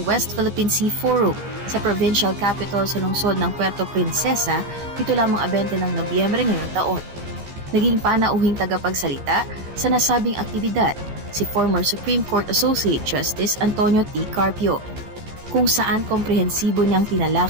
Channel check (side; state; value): left; late; 15 ms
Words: West Philippine Sea Forum sa provincial capital sa lungsod ng Puerto Princesa dito lamang 20 ng Nobyembre ngayong taon. Naging panauhing tagapagsalita sa nasabing aktibidad si former Supreme Court Associate Justice Antonio T. Carpio, kung saan komprehensibo niyang